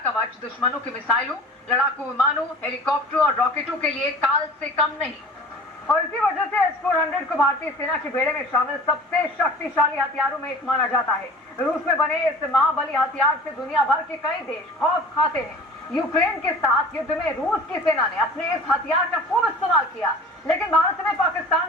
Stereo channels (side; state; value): both; normal; correlation 0.42